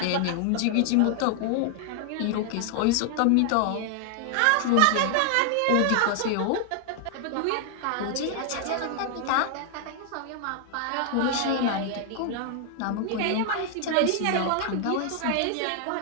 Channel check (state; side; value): different; both; correlation 0.00